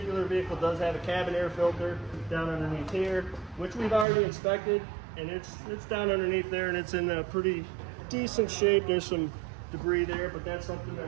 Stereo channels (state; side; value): drops out; left; at 4.0 s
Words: vehicle does have a cabin air filter down underneath here, which we've already inspected, and it's down underneath there, and it's in a pretty decent shape. There's some debris there, but that's something